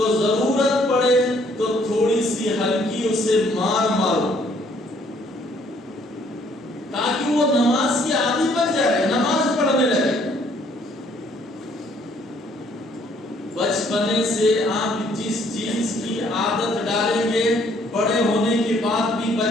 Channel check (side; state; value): both; normal; correlation 0.64